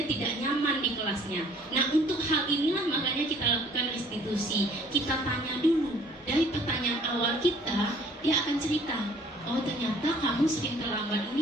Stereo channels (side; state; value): both; normal; correlation 0.56